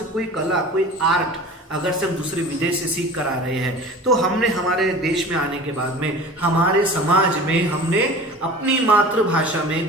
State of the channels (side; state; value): both; normal; correlation 0.39